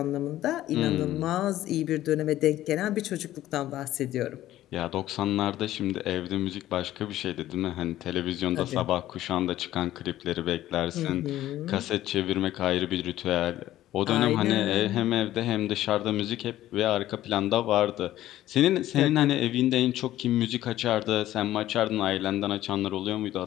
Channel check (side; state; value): right; quieter; 14.0 dB